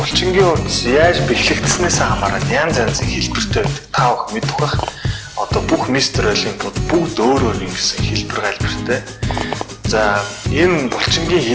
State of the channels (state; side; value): identical; both; correlation 1.00